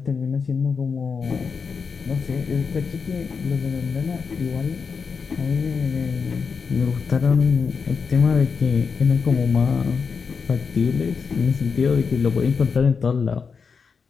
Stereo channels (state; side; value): quieter; right; 5.5 dB